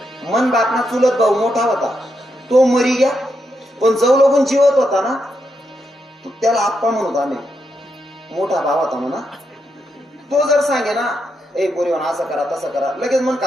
मन बापना चुलत भाऊ मोठा होता तो मरी गया पण जव लोगून जीवत होता ना त्याला आप्पा म्हणत आम्ही मोठा भाव होता म्हणा तो जर सांगे ना ए बोरीवन असं करा तसं करा लगेच मन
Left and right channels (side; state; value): both; normal; correlation 0.82